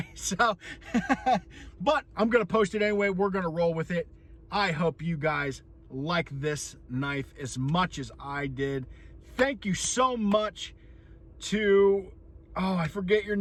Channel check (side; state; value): both; identical; correlation 1.00